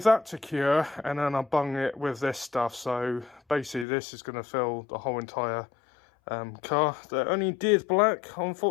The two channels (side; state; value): right; drops out; at 3.9 s